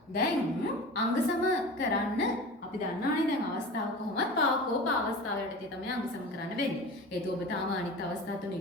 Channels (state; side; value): normal; both; correlation 0.34